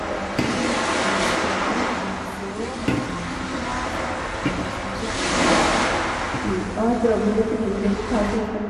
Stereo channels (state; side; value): identical; both; correlation 1.00